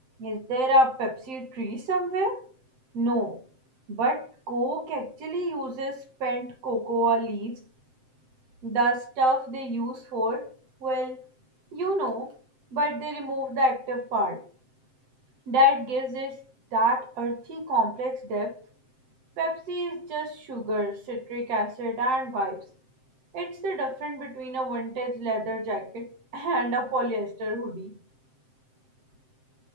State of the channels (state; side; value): late; left; 7.7 ms